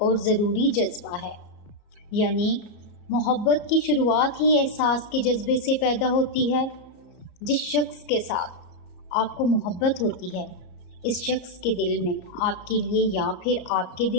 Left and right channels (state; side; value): late; right; 34 ms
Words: ضروری جذبہ ہے، یعنی محبت کی شروعات ہی احساس کے جذبے سے پیدا ہوتی ہے۔ جس شخص کے ساتھ آپ کو محبت ہوتی ہے، اس شخص کے دل میں آپ کے لیے یا پھر آپ کے